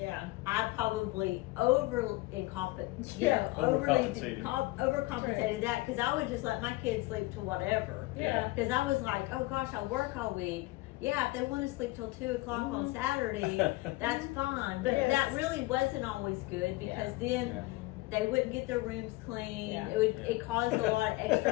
I probably overcompensated that because I would just let my kids sleep to whatever. Yeah. Because I was like, oh gosh, I work all week. Yeah, if they want to sleep till 2 o'clock on Mhm. Saturday, that's fine. But Yes. that really wasn't always good because then Yeah. they wouldn't get their rooms clean. Yeah. It caused a lot of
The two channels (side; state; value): right; quieter; 21.0 dB